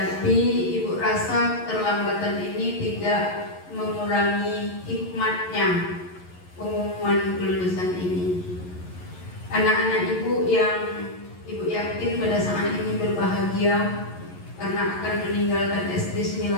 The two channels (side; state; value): right; late; 11 ms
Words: Ibu rasa keterlambatan ini tidak mengurangi hikmatnya pengumuman kelulusan ini. Anak-anak Ibu yang Ibu yakin pada saat ini berbahagia karena akan meninggalkan SD